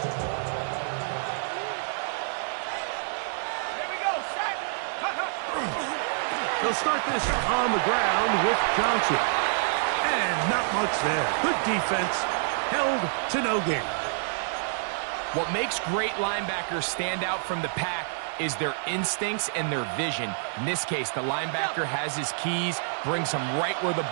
They'll start this on the ground with Johnson. And not much there. Good defense. Held to no gain. What makes great linebackers stand out from the pack is their instincts and their vision. In this case, the linebacker has his keys, brings him right where the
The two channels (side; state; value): left; silent; digital silence